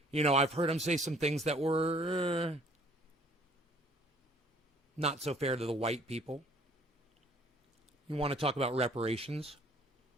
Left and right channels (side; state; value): both; normal; correlation 0.57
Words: I've heard him say some things that were not so fair to the white people. You want to talk about reparations?